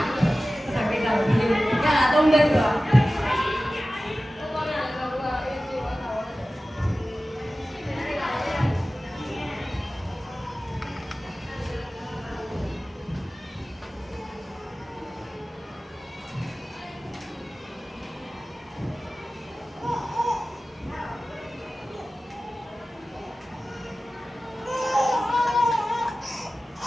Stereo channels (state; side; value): normal; both; correlation 0.96